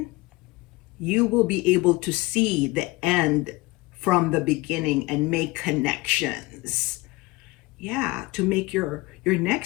you will be able to see the end from the beginning and make connections. Yeah, to make your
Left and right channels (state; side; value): quieter; right; 21.9 dB